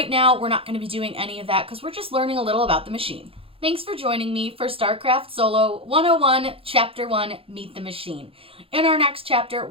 now we're not going to be doing any of that because we're just learning a little about the machine. Thanks for joining me for Starcraft Solo 101 Chapter 1 Meet the Machine. In our next chapter,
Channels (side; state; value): left; late; 0.27 ms